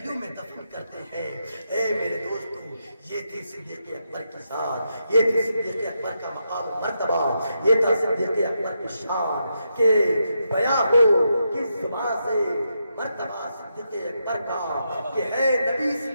میں دفن کرتے ہیں۔ اے میرے دوستو، یہ تھی صدیق اکبر کی ذات، یہ تھی صدیق اکبر کا مقام و مرتبہ، یہ تھا صدیق اکبر کی شان کہ بیاں ہو کس زبان سے مرتبہ صدیق اکبر کا کہ ہے نبی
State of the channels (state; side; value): inverted; both; correlation -0.83